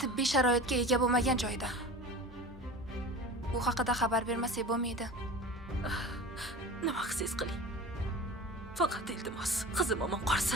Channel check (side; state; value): both; normal; correlation 0.35